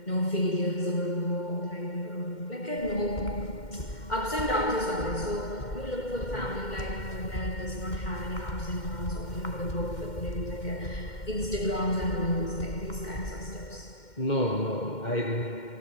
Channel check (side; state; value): right; late; 2.1 ms